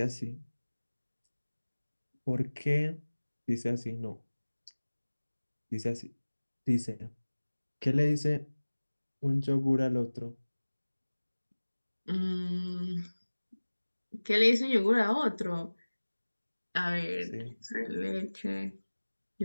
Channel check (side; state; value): both; inverted; correlation -1.00